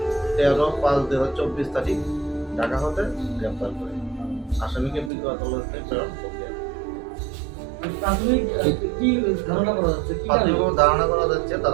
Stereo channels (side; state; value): left; drops out; at 5.1 s